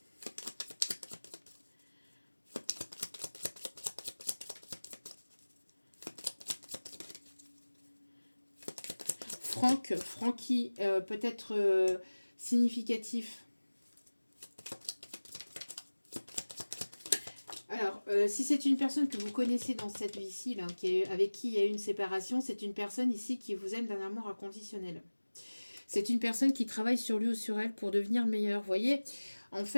Francky, peut-être significatif. Alors, si c'est une personne que vous connaissez dans cette vie-ci, avec qui il y a eu une séparation, c'est une personne ici qui vous aime d'un amour inconditionnel. C'est une personne qui travaille sur lui ou sur elle pour devenir meilleure. Vous voyez, en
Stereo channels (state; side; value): inverted; both; correlation -1.00